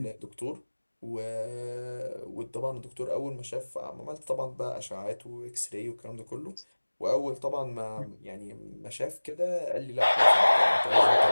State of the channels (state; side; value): inverted; both; correlation -1.00